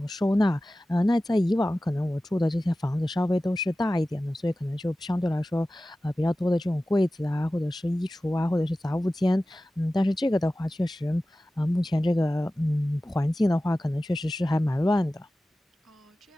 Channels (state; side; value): normal; both; correlation 0.96